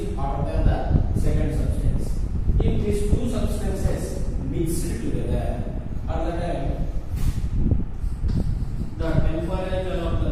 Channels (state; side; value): identical; both; correlation 1.00